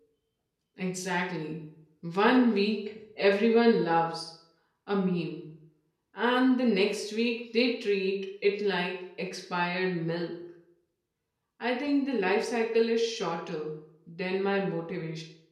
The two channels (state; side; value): identical; both; correlation 1.00